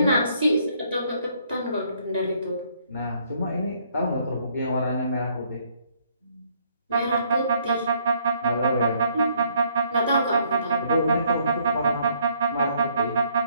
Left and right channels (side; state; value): both; inverted; correlation -0.67